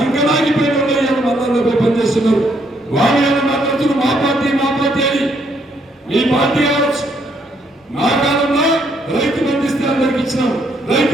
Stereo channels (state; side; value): normal; both; correlation 0.71